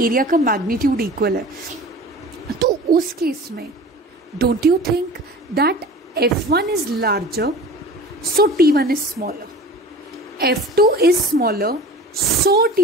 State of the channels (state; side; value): normal; both; correlation 0.39